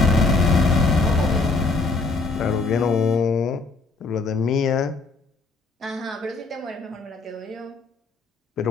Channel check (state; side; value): quieter; right; 3.7 dB